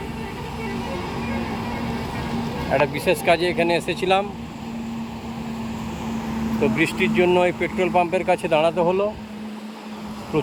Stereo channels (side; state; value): both; identical; correlation 1.00